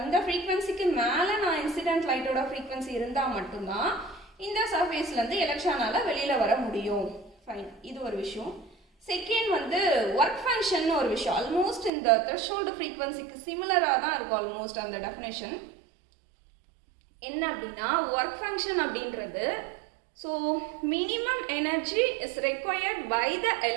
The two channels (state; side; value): drops out; left; at 11.9 s